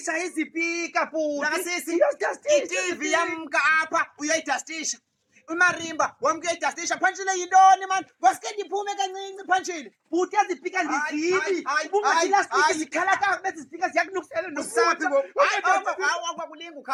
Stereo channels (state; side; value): identical; both; correlation 1.00